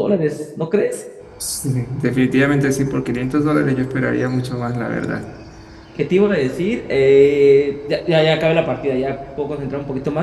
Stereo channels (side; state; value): both; identical; correlation 1.00